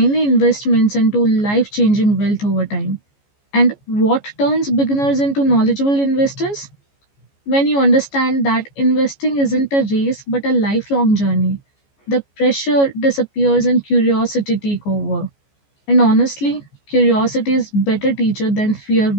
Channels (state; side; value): late; right; 14 ms